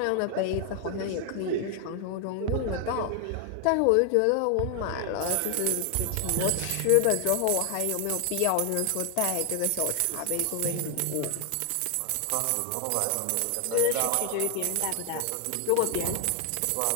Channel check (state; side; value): different; both; correlation 0.00